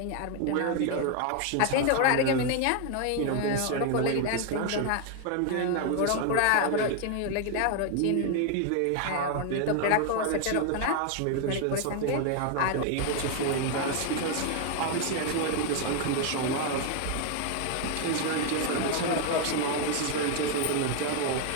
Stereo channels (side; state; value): both; different; correlation 0.00